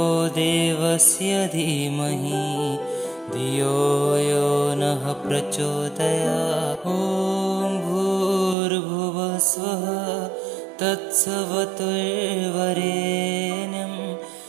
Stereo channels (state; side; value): drops out; left; at 8.6 s